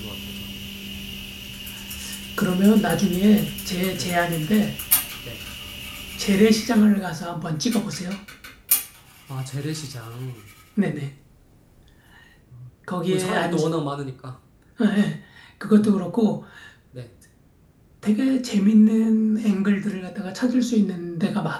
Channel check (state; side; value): identical; both; correlation 1.00